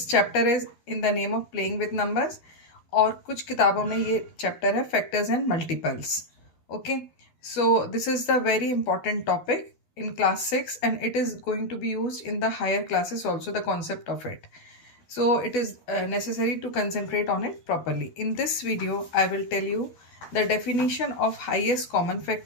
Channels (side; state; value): right; late; 12 ms